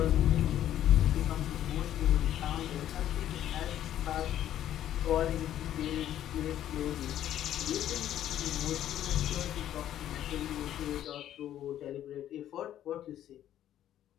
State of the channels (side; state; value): right; quieter; 11.7 dB